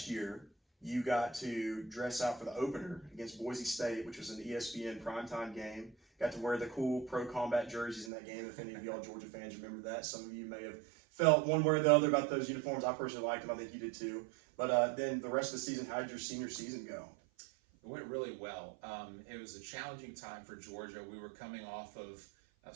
year, you got to dress out for the opener against Boise State, which was an ESPN primetime game. Got to wear the cool pro combat jerseys in that game. If any of y'all Georgia fans remember that, some of you may have felt one way or the other about those uniforms. I personally liked them. I think you did too. But then the rest of the season, how did your senior season go? It went really well. It was a challenging time for Georgia. We were coming off of,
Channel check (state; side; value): drops out; left; at 8.1 s